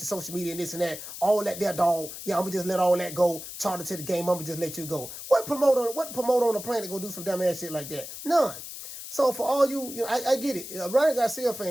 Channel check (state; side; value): noise; left; hiss, 10 dB below the sound